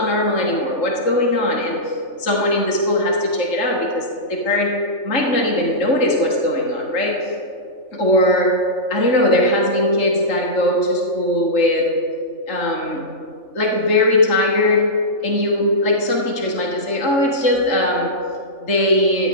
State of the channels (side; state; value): right; late; 3.7 ms